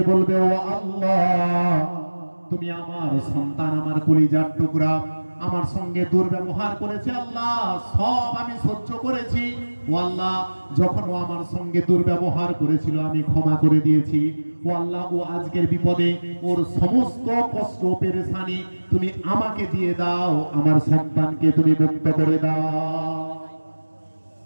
বলবে, ও আল্লাহ, তুমি আমার সন্তান, আমার কলিজার টুকরা, আমার সঙ্গে দুর্ব্যবহার করেছে, আল্লাহ সব আমি সহ্য করেছি, ও আল্লাহ যখন ও আমার সঙ্গে দুর্ব্যবহার করেছিল আমি ক্ষমা করে দিয়েছি, ও আল্লাহ ও আজকের বিপদে ওর সমস্ত কষ্ট পেরেশানি তুমি আমাকে দিয়ে দাও, আমার সন্তানকে তুমি মুক্ত করে দাও।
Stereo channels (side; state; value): both; inverted; correlation -1.00